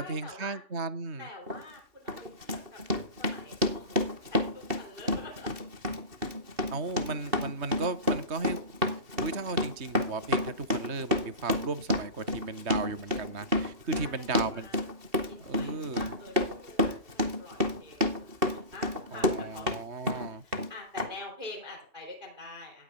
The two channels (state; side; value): late; left; 2.7 ms